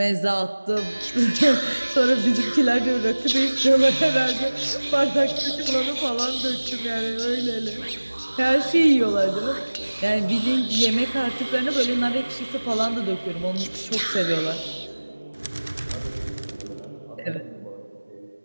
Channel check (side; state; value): both; inverted; correlation -1.00